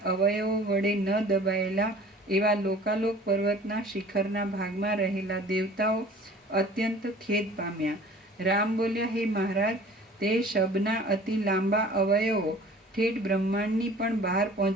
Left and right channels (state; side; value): normal; both; correlation 0.47